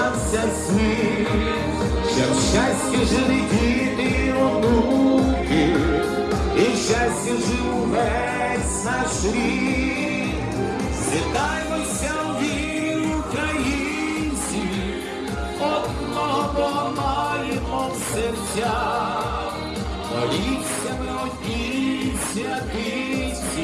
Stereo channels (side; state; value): both; identical; correlation 1.00